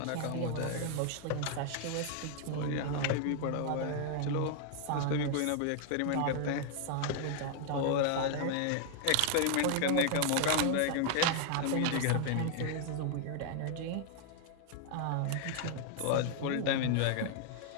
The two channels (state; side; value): different; both; correlation 0.00